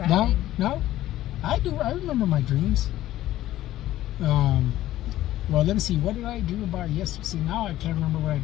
No? I do. I remember my dreams. Well, let me see. What did I dream about yesterday? See, now I can't remember what I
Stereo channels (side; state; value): right; quieter; 14.3 dB